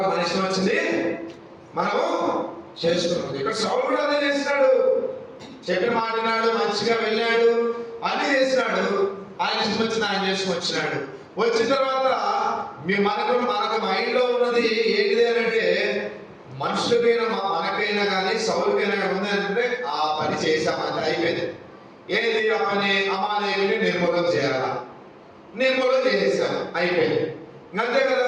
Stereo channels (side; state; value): both; identical; correlation 1.00